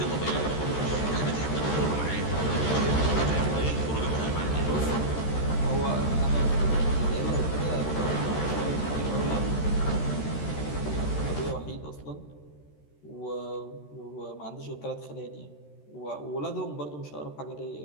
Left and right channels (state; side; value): late; right; 13 ms